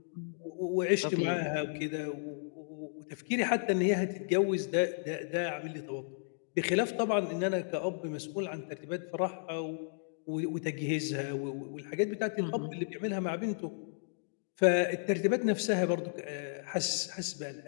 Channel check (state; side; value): silent; right; digital silence